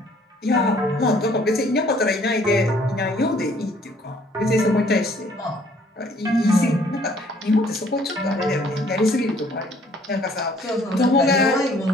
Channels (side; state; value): both; normal; correlation 0.60